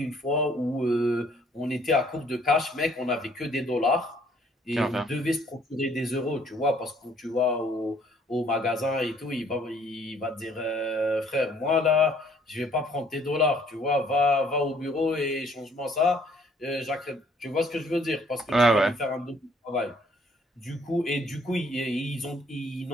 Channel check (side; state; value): both; normal; correlation 0.62